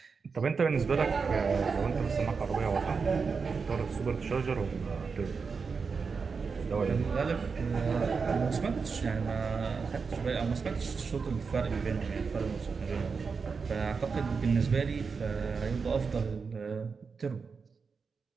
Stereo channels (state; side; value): quieter; left; 5.2 dB